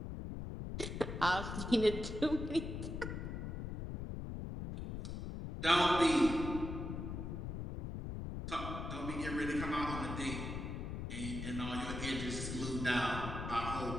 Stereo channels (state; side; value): noise; left; rumble, 5 dB below the sound